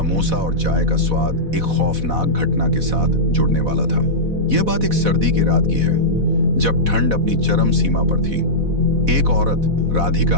और चाय का स्वाद एक खौफनाक घटना के साथ जुड़ने वाला था। यह बात एक सर्दी की रात की है, जब ठंड अपनी चरम सीमा पर थी। एक औरत,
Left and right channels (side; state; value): left; late; 4.1 ms